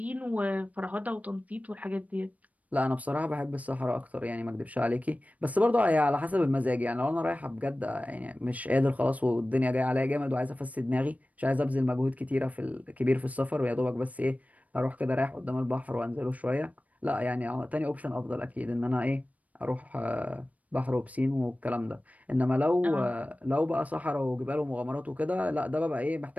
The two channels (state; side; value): late; left; 0.071 ms